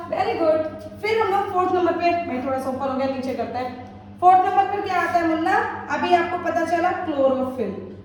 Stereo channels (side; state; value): both; identical; correlation 1.00